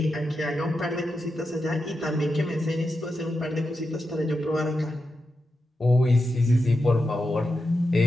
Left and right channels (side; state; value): both; normal; correlation 0.88